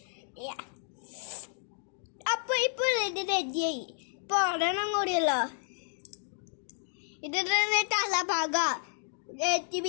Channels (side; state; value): right; silent; 57 dB below the other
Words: അപ്പൊ ഇപ്പോൾ ഇത് റെഡിയായി. ഇപ്പൊ ഒരെണ്ണം കൂടിയല്ലോ. ഇത് തല ഭാഗ